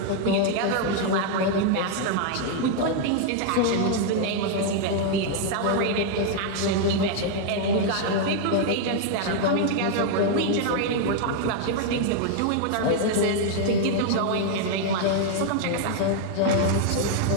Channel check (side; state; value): both; different; correlation 0.00